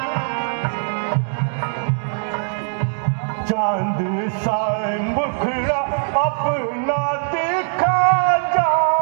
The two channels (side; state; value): left; silent; digital silence